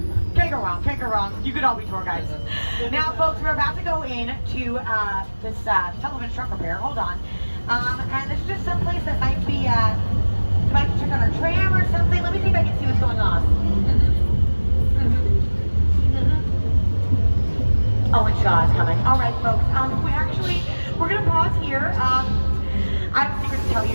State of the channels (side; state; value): both; inverted; correlation -1.00